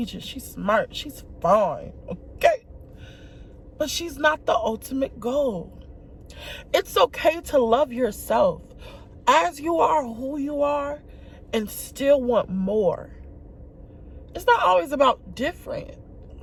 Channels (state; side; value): identical; both; correlation 1.00